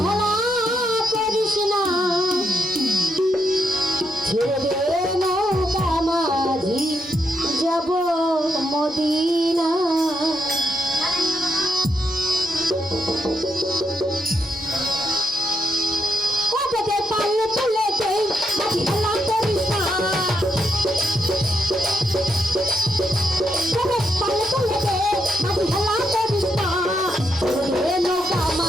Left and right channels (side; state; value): both; normal; correlation 0.80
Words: হেলা করিস না, ছেড়ে দে নৌকা মাঝি যাব মদিনা। কততে পারলে তুলে দে মাঝি হেলা করিস না, কততে পারলে তুলে দে মাঝি হেলা করিস না। ছেড়ে দে নৌকা